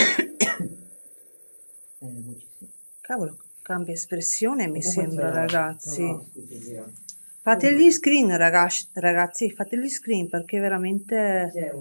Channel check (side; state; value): both; inverted; correlation -1.00